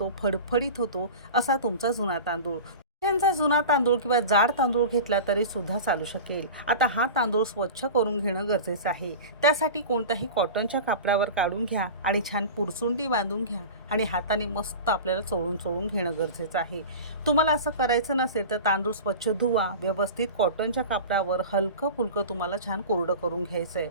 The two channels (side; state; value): both; inverted; correlation -0.33